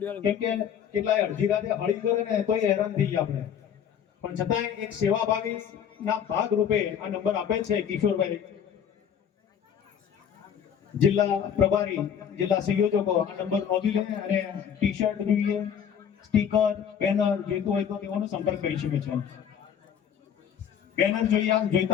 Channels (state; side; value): quieter; right; 8.4 dB